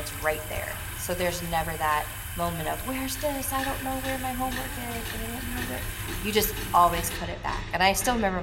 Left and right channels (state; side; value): identical; both; correlation 1.00